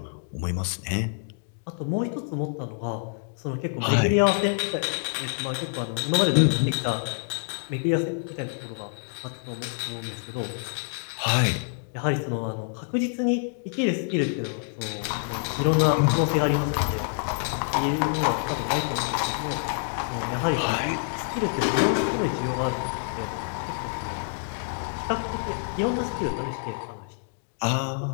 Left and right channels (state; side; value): silent; right; digital silence